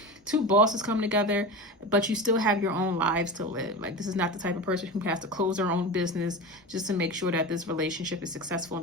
2 bosses coming together, but you still have your own lives to live. Like this is not the type of person who has to close their own business just to make sure that this relationship is successful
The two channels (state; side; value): normal; both; correlation 0.26